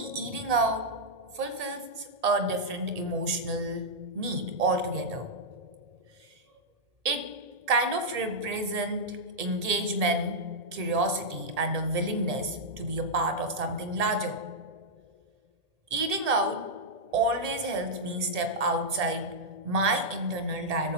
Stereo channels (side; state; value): left; late; 1.8 ms